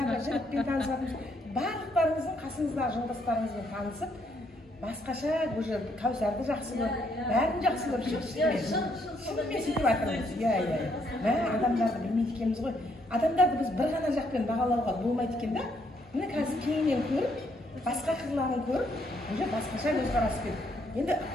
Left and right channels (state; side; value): normal; both; correlation 0.72